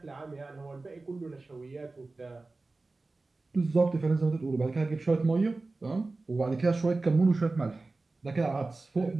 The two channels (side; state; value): left; quieter; 3.4 dB